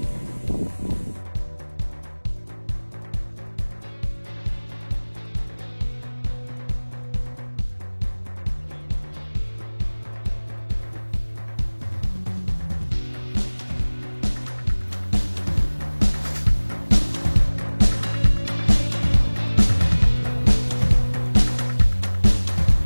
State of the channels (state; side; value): inverted; both; correlation -1.00